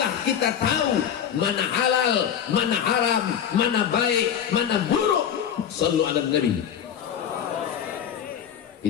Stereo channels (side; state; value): right; quieter; 8.9 dB